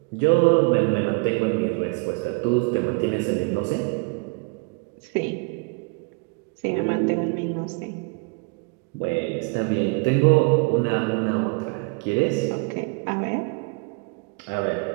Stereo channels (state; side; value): quieter; left; 32.1 dB